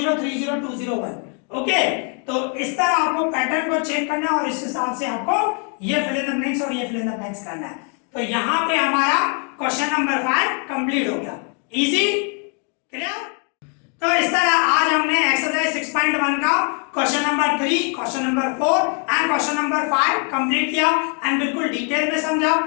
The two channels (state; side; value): quieter; right; 39.0 dB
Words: 3 0 2 0 1, ओके। तो इस तरह आपको पैटर्न को चेक करना है और इस हिसाब से आपको ये फिल इन द ब्लैंक्स और ये फिल इन द ब्लैंक्स करना है। तो यहाँ पे हमारा क्वेश्चन नंबर 5 कंप्लीट हो गया, इजी, क्लियर। तो इस तरह आज हमने एक्सरसाइज 6.1 का question number 3, question number 4 and question number 5 complete किया एंड बिल्कुल डिटेल में समझा।